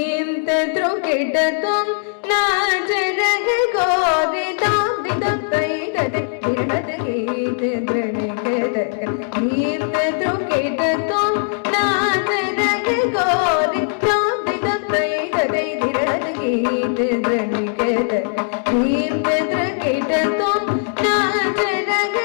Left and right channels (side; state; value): right; silent; digital silence